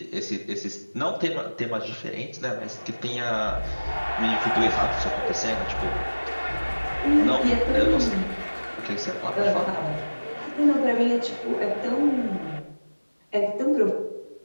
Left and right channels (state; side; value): inverted; both; correlation -1.00